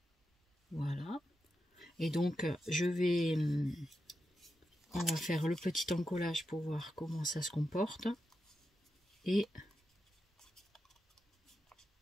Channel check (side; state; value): both; normal; correlation 0.88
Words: Voilà. Et donc je vais... on va faire le petit encollage pour voir comment ça se comporte. Et